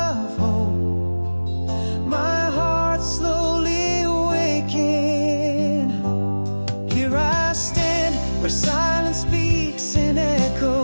hope, my heart slowly awaking. Here I stand where silence speaks in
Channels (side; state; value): both; inverted; correlation -1.00